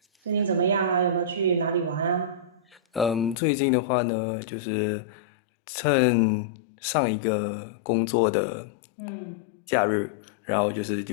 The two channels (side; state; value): right; drops out; at 3.4 s